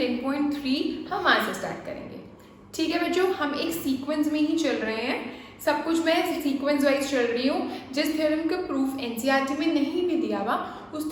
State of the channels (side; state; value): both; identical; correlation 1.00